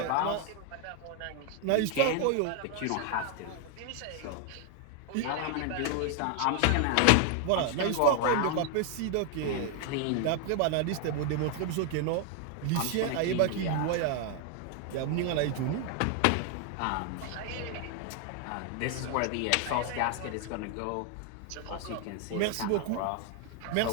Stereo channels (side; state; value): both; different; correlation 0.00